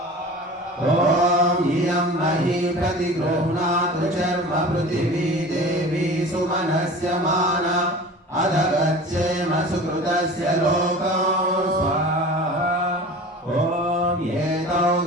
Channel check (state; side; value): normal; both; correlation 0.38